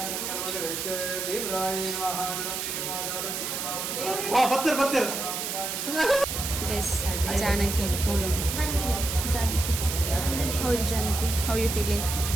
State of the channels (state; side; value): noise; right; hiss, 3 dB below the sound